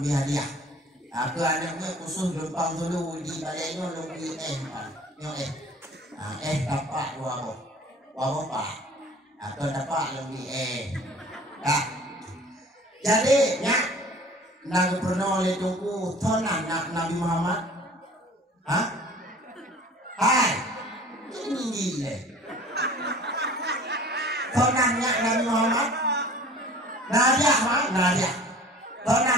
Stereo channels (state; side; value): normal; both; correlation 0.47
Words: lebih hadiah. Aku anaknya khusus lempang dulu di balaynya lebih pan. Nyo tapak dua boh. Waboh pak. Aku tapak lebih tak. Jadi, ya, nak pernah oleh tunggu tonan nak Nabi Muhammad, Hai, ini gila. Tonannya Nabi Muhammad, Nadia, tonan